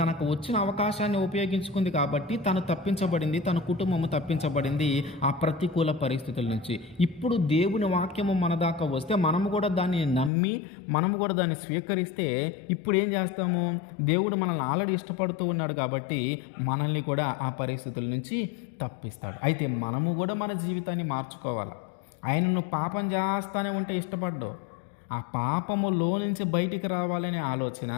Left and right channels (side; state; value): right; drops out; at 10.3 s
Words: వచ్చిన అవకాశాన్ని ఉపయోగించుకుంది కాబట్టి తను తప్పించబడింది, తన కుటుంబము తప్పించబడింది ఆ ప్రతికూల పరిస్థితుల నుంచి. ఇప్పుడు దేవుని వాక్యము మన దాకా వస్తే మనము కూడా దాన్ని నమ్మి మనము కూడా దాన్ని స్వీకరిస్తే ఇప్పుడు ఏం చేస్తాము? దేవుడు మనల్ని ఆల్రెడీ ఇష్టపడుతూ ఉన్నాడు కాబట్టి మనల్ని కూడా ఆ పరిస్థితుల నుంచి తప్పిస్తాడు. అయితే మనము కూడా మన జీవితాన్ని మార్చుకోవాలి. ఆయనను పాపం చేస్తానే ఉంటే ఇష్టపడ్డావు, ఆ పాపములో నుంచి బయటికి రావాలనే ఆలోచన,